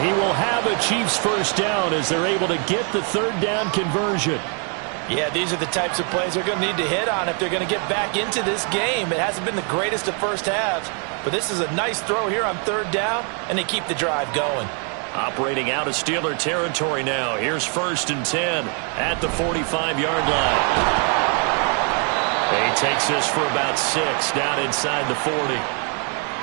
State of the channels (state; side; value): quieter; left; 39.8 dB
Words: he will have a Chiefs first down as they're able to get the third down conversion. Yeah, these are the types of plays they're going to need to hit on if they're going to get back into this game. It hasn't been the greatest of first halves, but this is a nice throw here on third down, and they keep the drive going. Operating out of Steeler territory now. Here's 1st and 10 at the 45-yard line. He takes this for about 6 down inside the 40.